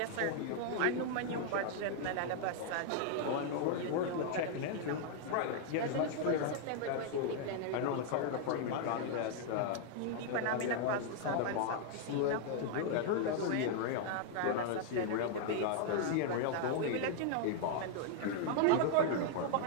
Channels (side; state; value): both; different; correlation 0.00